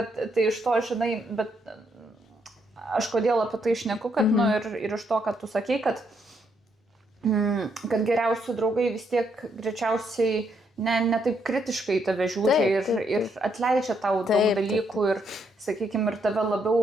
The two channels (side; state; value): both; normal; correlation 0.75